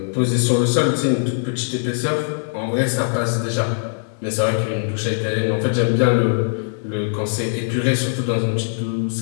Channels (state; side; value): silent; right; digital silence